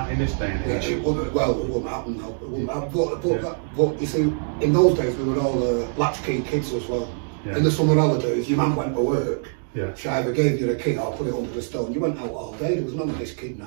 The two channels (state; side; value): silent; left; 63 dB below the other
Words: in this day and age? It wouldn't happen now. It wouldn't happen. But you see, in those days we were all latchkey kids as well. Yeah. In the summer holidays, your man went to work. Yeah. She either gave you the key or put it under the stone. You went out all day. There was none of this